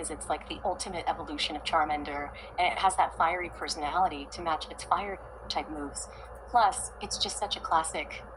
it's like the ultimate evolution of Charmander, and it has that fiery personality to match its fire type moves. Plus, it's just such a classic,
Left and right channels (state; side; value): identical; both; correlation 1.00